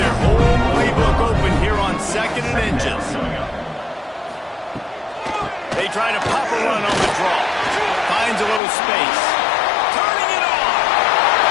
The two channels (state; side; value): drops out; right; at 8.6 s